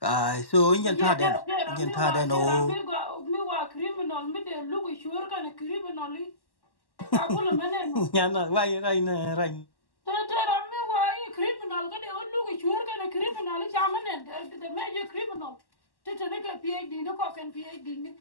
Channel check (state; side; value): late; right; 1.1 ms